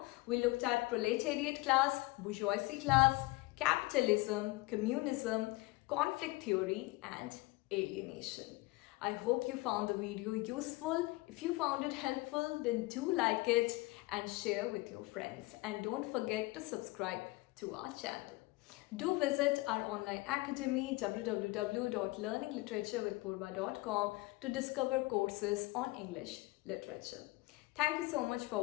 We looked at proletariat class, bourgeoisie class, capitalism, communism, conflict theory, and alienation. I hope you found the video useful. If you found it helpful, then do like it and share with your friends. And don't forget to subscribe to our channel. Do visit our online academy www.learningliteratureWithPurva.com to discover courses on English literature. Thank you so much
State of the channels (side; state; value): right; quieter; 21.6 dB